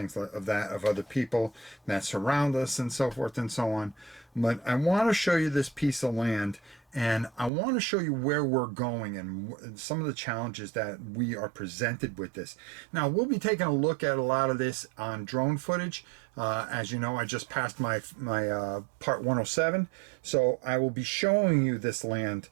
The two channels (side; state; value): left; drops out; at 7.5 s